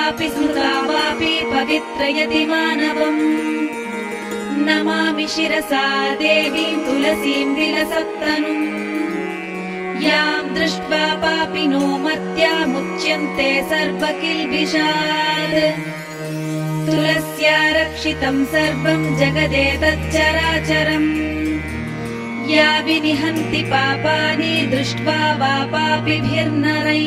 स्मृता वापि पवित्रयति मानवम् नमामि शिरसा देवीं तुलसीं विलसत्तनुम् यां दृष्ट्वा पापिनो मर्त्यामुच्यन्ते सर्वकिल्बिषात् तुलस्या रक्षितं सर्वं जगदेतच्चराचरम् या विनिहन्ति पापानि दृष्ट्वा वा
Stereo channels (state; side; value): identical; both; correlation 1.00